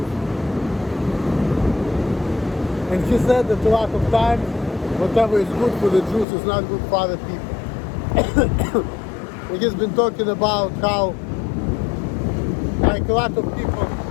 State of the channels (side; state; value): right; drops out; at 6.2 s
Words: And he said that a lot of times, whatever is good for the Jews is not good for other people. And he's been talking about how, like a lot of people,